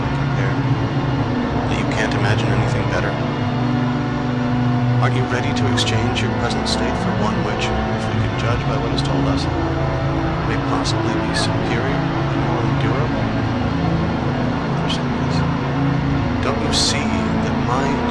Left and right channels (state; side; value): identical; both; correlation 1.00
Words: compare, that you can't imagine anything better? Aren't you ready to exchange your present state for one which, if we can judge by what is told us, may possibly be superior and more endurable? Don't you see that my